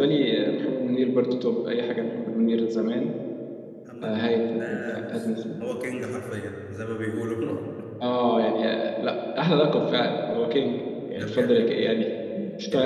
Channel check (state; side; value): identical; both; correlation 1.00